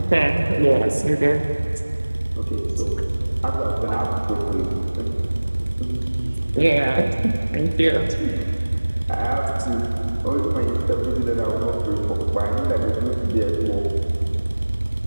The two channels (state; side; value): inverted; both; correlation -1.00